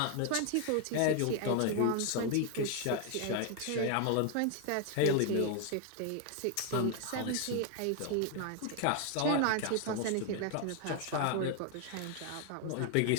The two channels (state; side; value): different; both; correlation 0.01